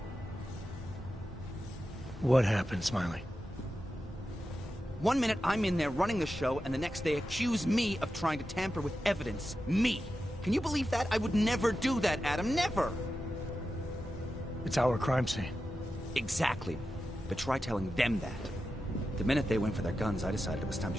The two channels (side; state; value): both; normal; correlation 0.91